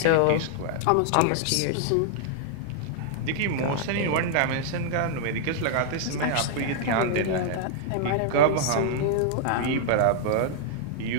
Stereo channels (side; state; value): both; different; correlation -0.01